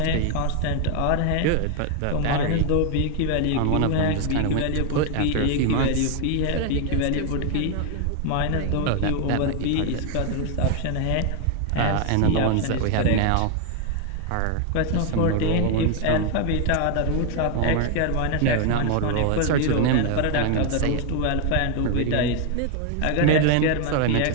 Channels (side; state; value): both; different; correlation 0.01